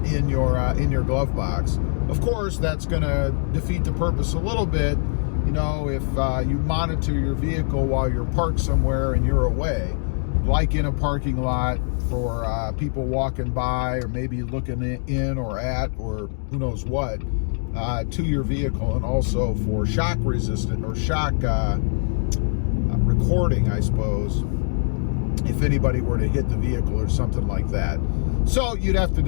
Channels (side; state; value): right; silent; digital silence